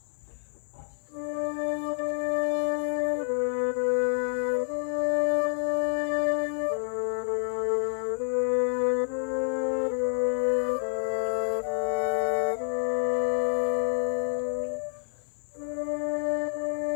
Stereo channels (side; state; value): right; silent; 57 dB below the other